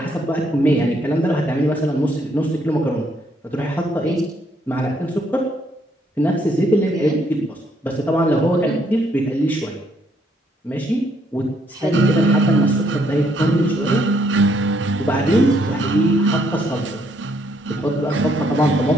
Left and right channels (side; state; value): both; normal; correlation 0.70